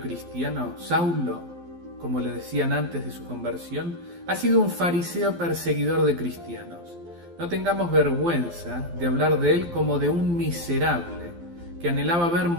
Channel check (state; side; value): late; left; 12 ms